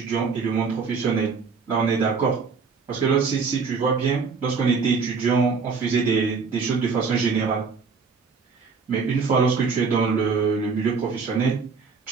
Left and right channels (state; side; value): quieter; left; 5.1 dB